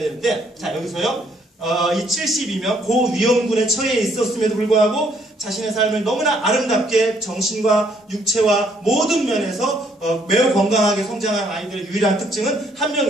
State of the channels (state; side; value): normal; both; correlation 0.67